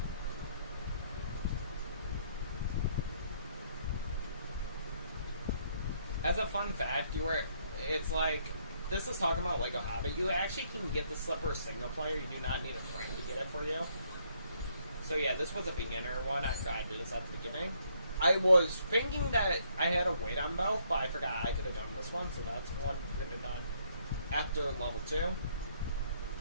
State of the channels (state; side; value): inverted; both; correlation -0.69